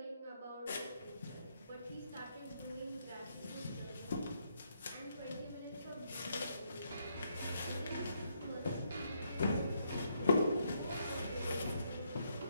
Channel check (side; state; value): both; inverted; correlation -0.75